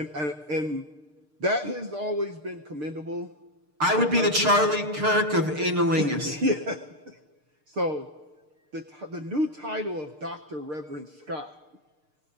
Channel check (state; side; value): late; left; 6.6 ms